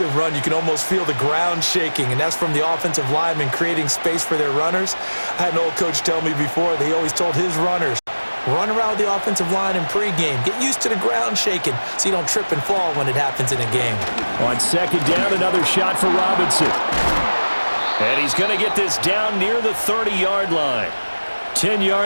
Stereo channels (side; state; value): both; inverted; correlation -1.00